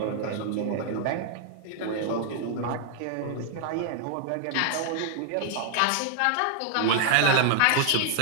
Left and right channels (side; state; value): both; different; correlation 0.00